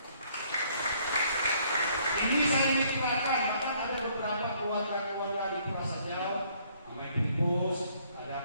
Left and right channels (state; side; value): inverted; both; correlation -0.64